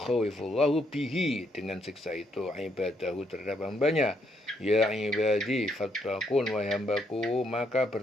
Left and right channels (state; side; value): normal; both; correlation 0.74